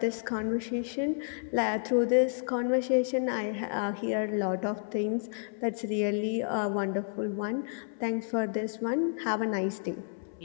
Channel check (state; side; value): silent; right; 57 dB below the other